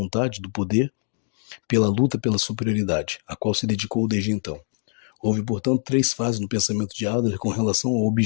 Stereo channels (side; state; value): right; silent; digital silence